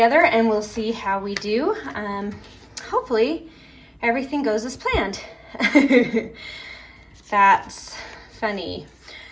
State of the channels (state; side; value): identical; both; correlation 1.00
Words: and we'll see how we do. Hopefully everything goes as planned. That's funny.